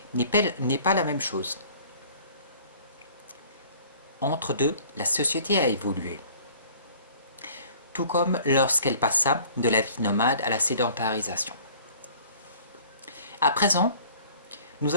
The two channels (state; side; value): inverted; both; correlation -0.51